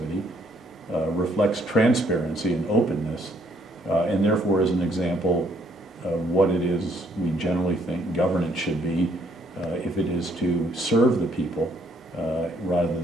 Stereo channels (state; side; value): normal; both; correlation 0.67